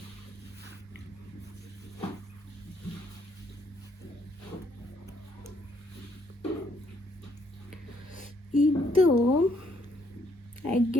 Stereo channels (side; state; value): both; normal; correlation 0.70